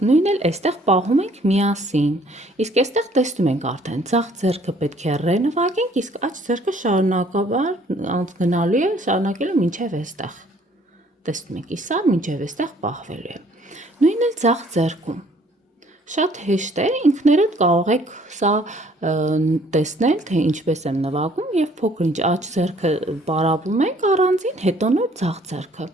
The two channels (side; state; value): both; normal; correlation 0.60